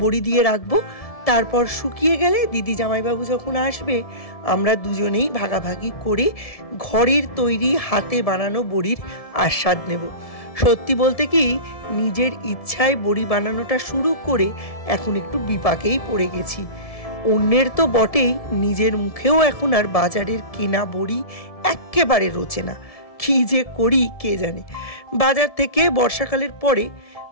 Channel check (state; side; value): late; right; 1.7 ms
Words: বড়ি দিয়ে রাখবো, তারপর শুকিয়ে গেলে দিদি জামাইবাবু যখন আসবে আমরা দুজনেই ভাগাভাগি করে ঘরের তৈরি হাতে বানানো বড়ির আস্বাদ নেব। সত্যি বলতে কি, নিজের ইচ্ছায় বড়ি বানানোটা শুরু করে এখন একটু বিপাকেই পড়ে গেছি। অন্যের তো বটেই, নিজের মুখেও এখন আর বাজারের কেনা বড়ি একেবারে রোচে না। কী যে করি কে জানে। বাজার থেকে বর্ষাকালের পরে